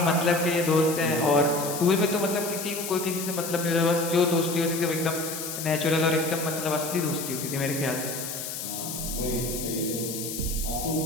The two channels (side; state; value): left; noise; hiss, 6 dB below the sound